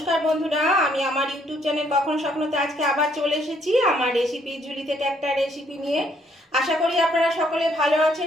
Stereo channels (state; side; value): normal; both; correlation 0.68